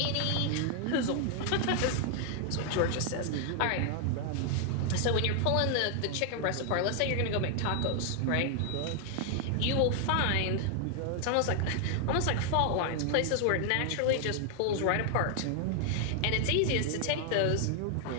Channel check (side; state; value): both; different; correlation 0.00